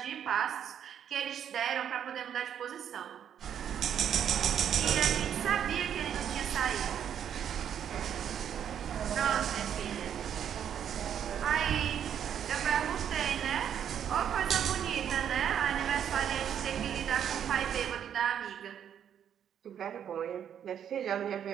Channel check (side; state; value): left; quieter; 9.1 dB